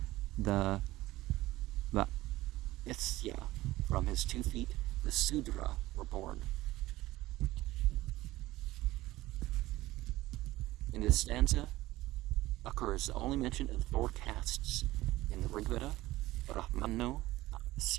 the Isya. From his 2 feet, the Sudra were born. In this stanza occurs the only mention of 4 castes in the Rig Veda: Brahmano,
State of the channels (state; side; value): quieter; left; 17.4 dB